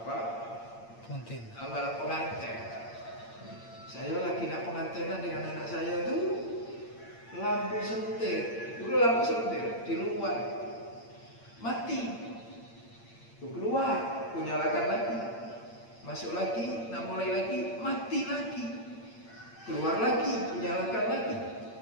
Malam pengantin. Saya lagi nak pengantinan dengan anak saya tuh lampu sentir, dulu lampu sentir di luar mati, keluar, kunyalakan lagi, masuk lagi, nak mulai lagi, mati lagi, keluar lagi, kunyalakan lagi,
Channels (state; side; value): late; right; 8.8 ms